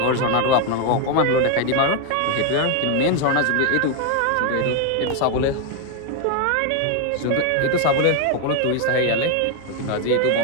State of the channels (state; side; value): different; both; correlation 0.01